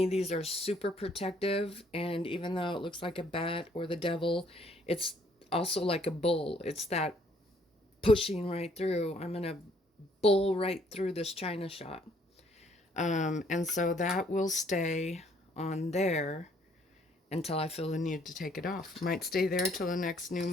these are super protective, and even though it looks like a bat or the devil, it's also like a bull. It's that pushing right through. I'm gonna bull right through this china shop. And so that will stay on there until I feel the need to take it off. Might stay there till the next new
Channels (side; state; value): both; normal; correlation 0.64